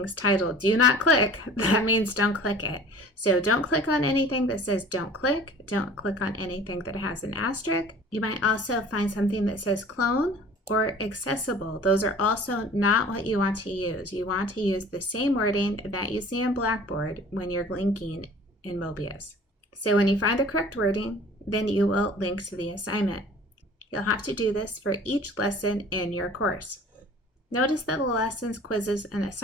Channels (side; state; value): both; normal; correlation 0.46